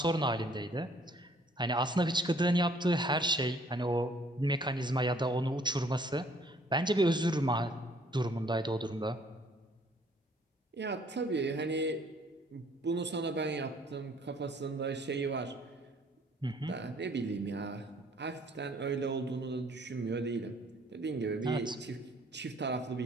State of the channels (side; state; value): both; normal; correlation 0.60